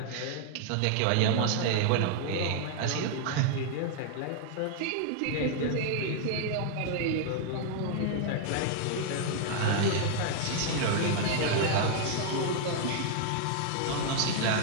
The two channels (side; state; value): both; different; correlation 0.00